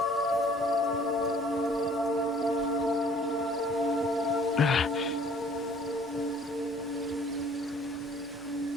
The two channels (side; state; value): right; noise; rumble, 26 dB below the sound